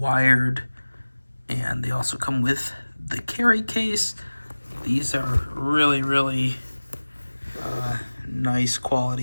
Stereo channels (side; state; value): both; inverted; correlation -1.00